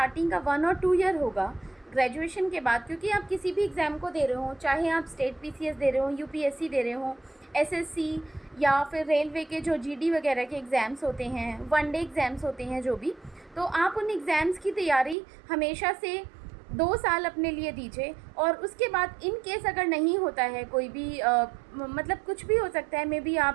का 1 और 2 ईयर होगा ग्रेजुएशन के बाद, क्योंकि आप किसी भी एग्ज़ाम को दे रहे हो, चाहे आप स्टेट पीसीएस दे रहे हो, यूपीएससी दे रहे हो, एसएससी या फिर रेलवे के जो जीडी वगैरह के एग्ज़ाम्स होते हैं, वन डे एग्ज़ाम्स होते हैं जो भी, तो आप उन एग्ज़ाम्स की तैयारी हमेशा से 2 साल अपने लिए दीजिए। और उसके बाद इन केस अगर नहीं होता है कोई भी मतलब कुछ भी हो सकता है, मे बी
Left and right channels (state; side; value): drops out; left; at 15.2 s